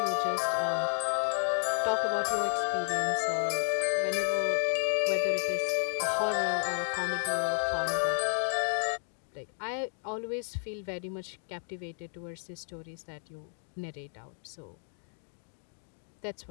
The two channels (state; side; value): silent; right; 56 dB below the other